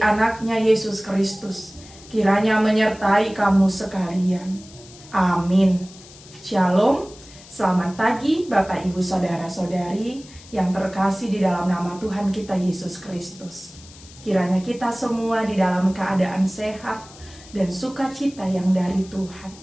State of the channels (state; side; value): noise; left; hiss, 21 dB below the sound